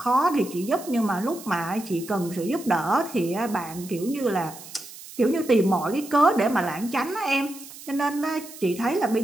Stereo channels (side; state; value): right; noise; hiss, 16 dB below the sound